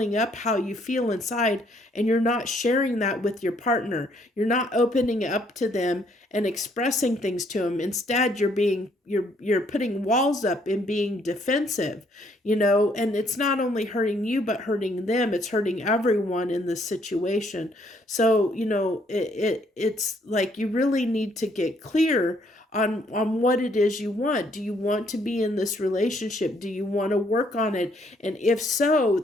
up how you feel inside, and you're not sharing that with your partner. You're not opening up to them and expressing things to them. Instead, you're putting walls up and being defensive, and it's not only hurting you but hurting them. It's hurting everyone in this situation. So, it's like you really need to get clear on what it is you want. Do you want to be in this relationship? Do you want to work on it? And if so,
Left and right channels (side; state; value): both; normal; correlation 0.67